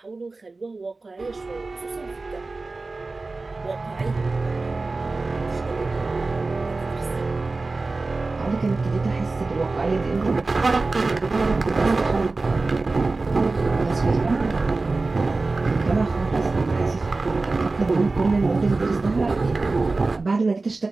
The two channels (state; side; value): quieter; left; 3.5 dB